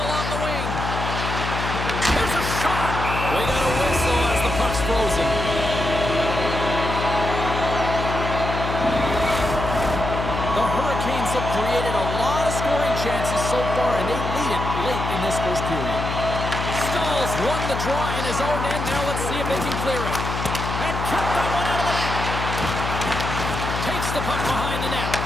along the wing. Here's a shot. We got a whistle as the puck's frozen. The Hurricanes have created a lot of scoring chances so far, and they lead it late in this first period. Stahls won the draw in his own end. Now let's see if they can clear it. And kept that one out of the net. Takes the puck behind the net.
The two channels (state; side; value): noise; left; hum, 4 dB below the sound